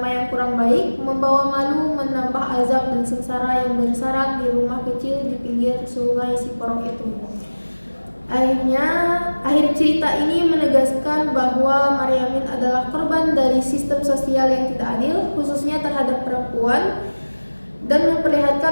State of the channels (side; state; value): both; inverted; correlation -1.00